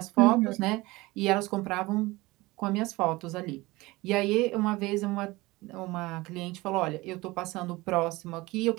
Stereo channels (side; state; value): left; quieter; 21.1 dB